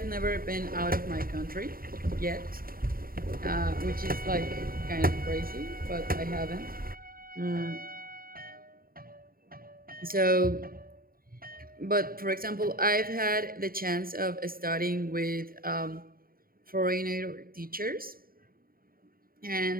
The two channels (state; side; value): late; left; 0.42 ms